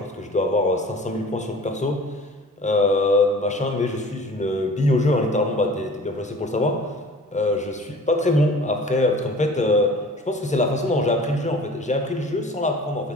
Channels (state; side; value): normal; both; correlation 0.45